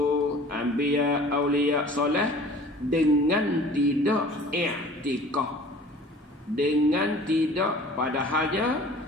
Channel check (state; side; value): normal; both; correlation 0.47